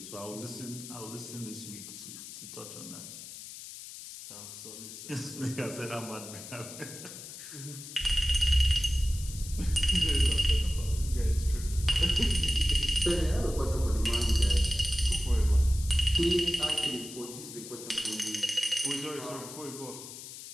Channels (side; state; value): left; noise; hiss, 12 dB below the sound